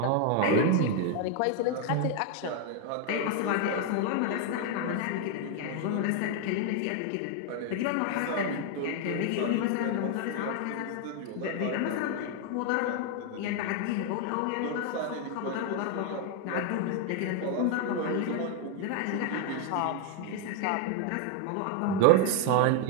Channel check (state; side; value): different; both; correlation 0.00